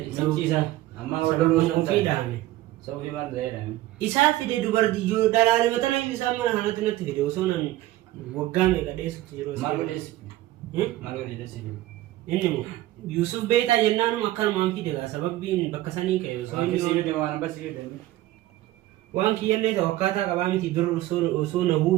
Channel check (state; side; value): quieter; left; 15.7 dB